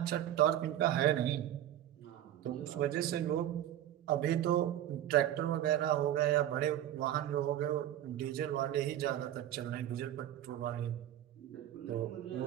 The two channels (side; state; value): left; quieter; 12.0 dB